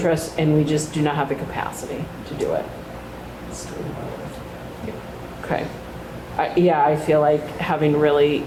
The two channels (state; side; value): identical; both; correlation 1.00